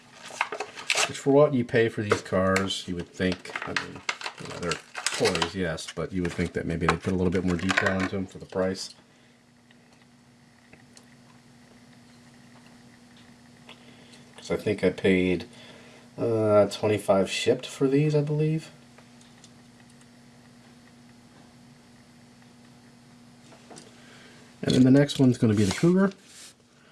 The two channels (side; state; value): both; identical; correlation 1.00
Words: Which, for what you pay for these cars, you would think, I mean, you know, they're toys, yes, but you would think that maybe they'd put a little bit more detail into them for the price. Because I think I paid $25 shipped for these, I believe. And then the next one's going to be the Cougar.